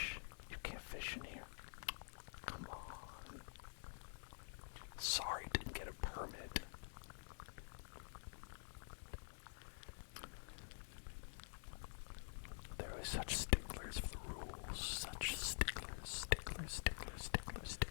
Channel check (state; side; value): silent; right; digital silence